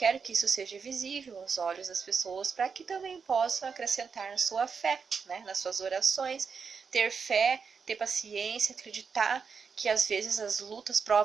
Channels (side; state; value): left; quieter; 5.7 dB